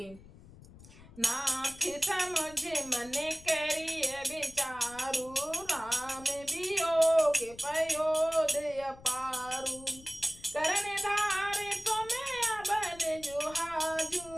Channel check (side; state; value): left; noise; rumble, 20 dB below the sound